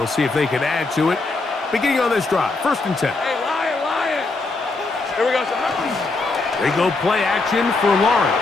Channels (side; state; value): right; quieter; 3.5 dB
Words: we'll see if they can add to it. Beginning on this drive, 1st and 10. Hey, Lion. Here we go. They go play action for